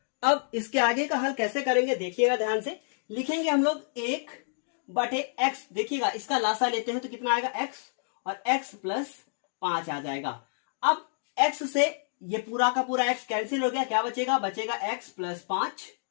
अब इसके आगे का हल कैसे करेंगे देखिएगा ध्यान से, लिखेंगे हम लोग 1/x, देखिएगा इसका लासा लेते हैं तो कितना आएगा x, और x प्लस 5 आ जाएगा। अब x से ये पूरा का पूरा x कैंसिल हो गया, क्या बचेगा, बचेगा x प्लस 5,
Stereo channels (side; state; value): right; silent; digital silence